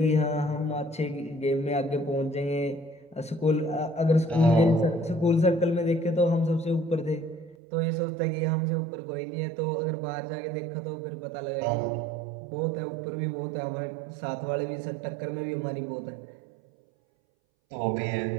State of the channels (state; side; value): drops out; left; at 7.6 s